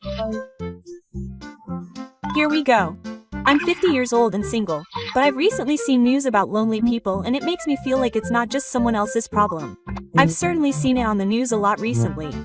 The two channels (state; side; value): identical; both; correlation 1.00